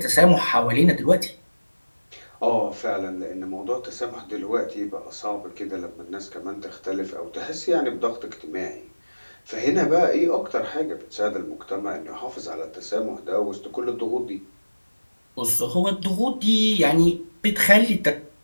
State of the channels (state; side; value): inverted; both; correlation -1.00